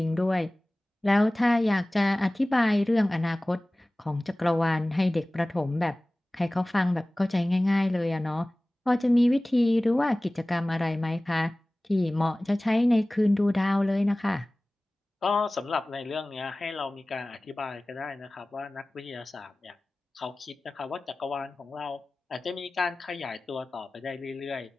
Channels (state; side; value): normal; both; correlation 0.98